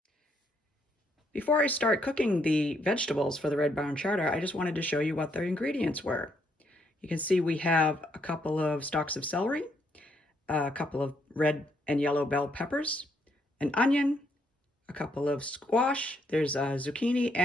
Before I start cooking the vegetables for the Red Barn Charter, I just wanted to show you what the ingredients were. You can see we have a couple of stalks of celery, a couple of red and yellow bell peppers, an onion, a couple of squash, there's a zucchini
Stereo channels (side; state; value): both; normal; correlation 0.73